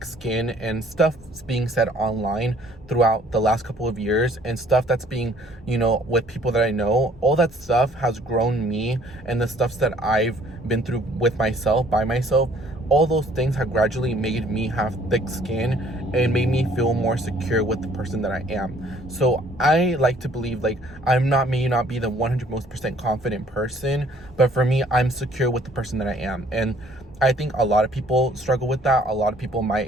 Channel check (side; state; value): both; normal; correlation 0.59